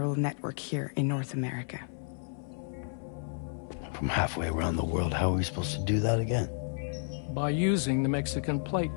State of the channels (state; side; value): silent; right; 57 dB below the other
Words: network here in North America. From halfway around the world, how are we supposed to do that again? By using the Mexican